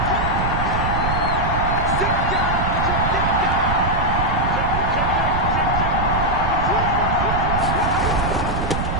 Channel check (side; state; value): right; noise; rumble, 2 dB below the sound